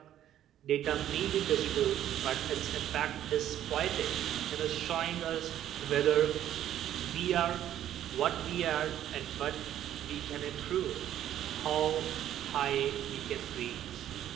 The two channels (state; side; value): quieter; left; 11.5 dB